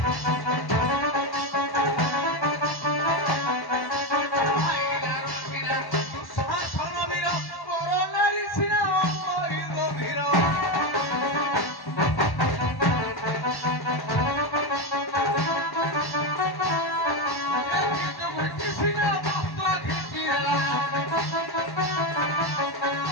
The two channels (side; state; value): right; late; 1.1 ms